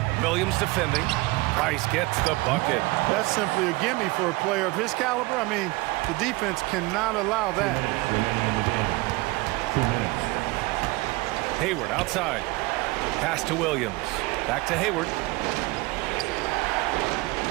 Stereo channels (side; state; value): left; quieter; 22.6 dB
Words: Williams defending. Price gets the bucket. That's simply a gimme for a player of his caliber. I mean, the defense cannot allow that. Hayward outside. Pass to Williams. Back to Hayward.